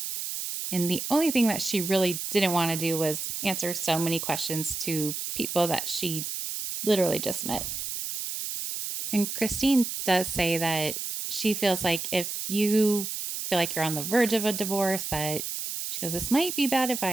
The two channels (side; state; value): right; noise; hiss, 5 dB below the sound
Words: And the only thing that she really didn't want to do was answer so many questions to people that she literally just met. And Christine does say that she feels like if you feel like you're on the verge of a divorce, that she goes, this might be bad